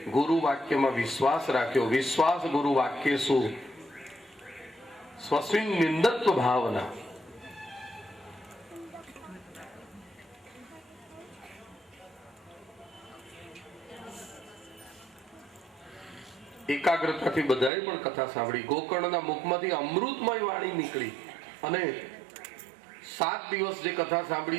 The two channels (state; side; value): drops out; left; at 17.7 s